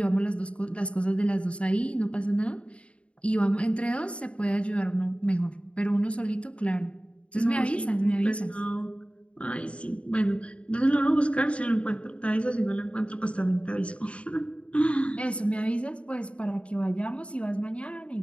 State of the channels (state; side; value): late; right; 0.060 ms